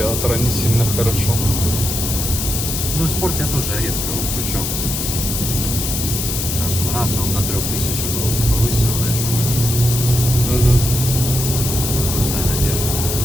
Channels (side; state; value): left; noise; hiss, 2 dB below the sound